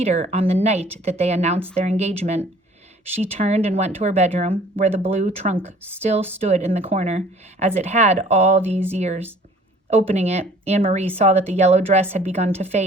on the night that they announced their engagement. She turned and went to her bedroom, where the blue trunk still stood in the corner, as it had all these years. Opening it, Anne-Marie saw that the yellow dress had begun to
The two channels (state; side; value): normal; both; correlation 0.53